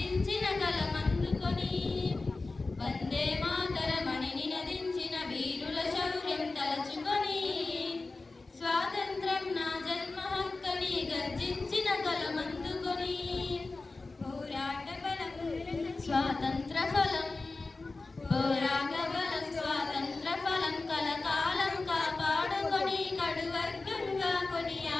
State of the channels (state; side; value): quieter; right; 3.6 dB